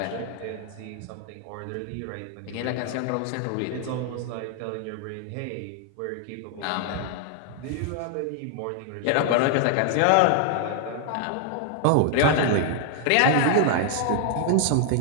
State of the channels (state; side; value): different; both; correlation 0.00